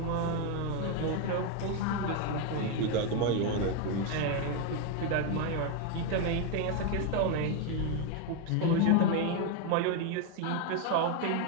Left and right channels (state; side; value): different; both; correlation 0.01